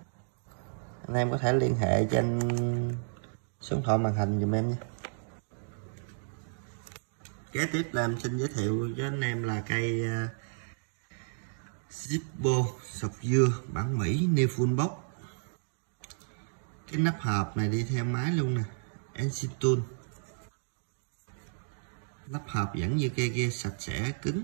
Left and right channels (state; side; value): silent; left; digital silence